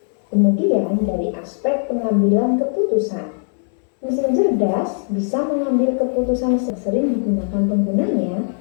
Kemudian dari aspek pengambilan keputusan, mesin cerdas bisa mengambil keputusan sering digunakan penggunanya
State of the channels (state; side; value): silent; right; digital silence